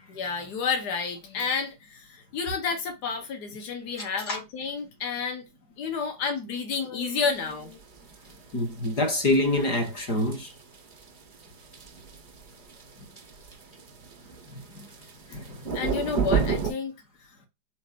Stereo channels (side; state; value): right; late; 4.9 ms